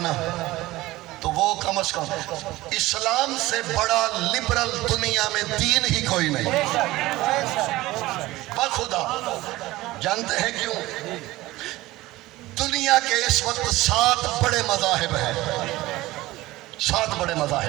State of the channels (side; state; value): left; quieter; 18.2 dB